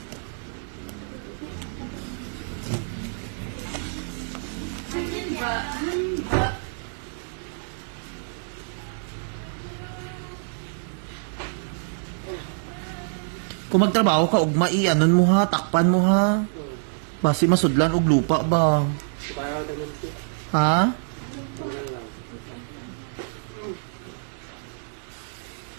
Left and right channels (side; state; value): left; silent; digital silence